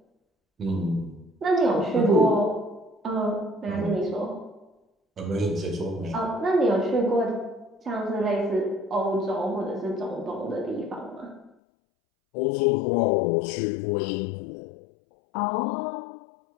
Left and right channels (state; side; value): drops out; right; at 11.5 s